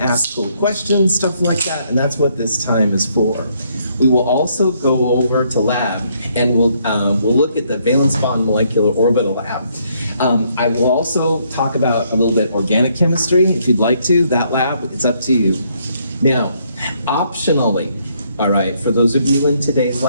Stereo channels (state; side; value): inverted; both; correlation -0.71